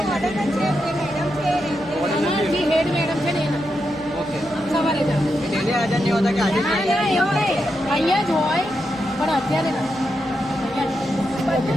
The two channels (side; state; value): left; noise; rumble, 24 dB below the sound